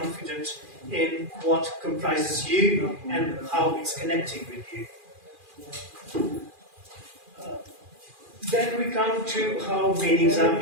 in what comprises you and how it's connecting with you. Then we come to how meanings are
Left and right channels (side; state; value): left; late; 2.4 ms